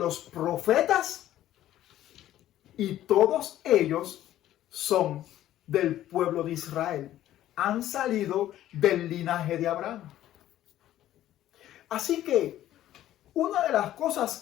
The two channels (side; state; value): right; quieter; 13.0 dB